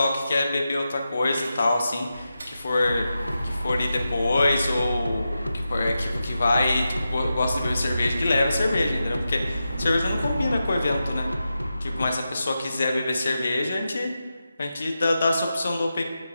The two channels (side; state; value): both; inverted; correlation -0.90